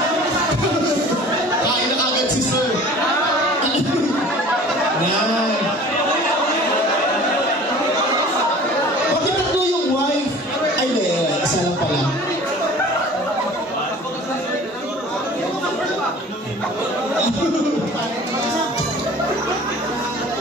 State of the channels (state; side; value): normal; both; correlation 0.45